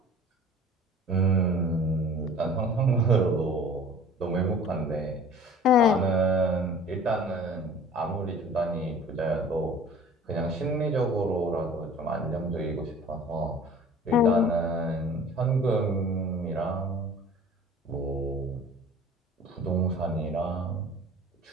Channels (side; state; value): both; normal; correlation 0.45